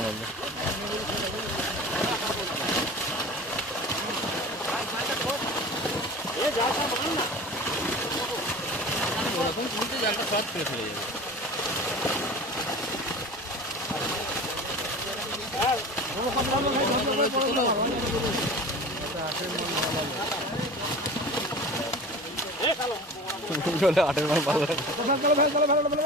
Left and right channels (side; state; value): both; normal; correlation 0.36